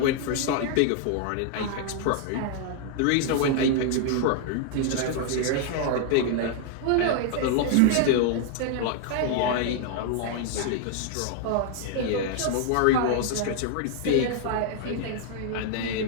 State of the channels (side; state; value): both; different; correlation 0.00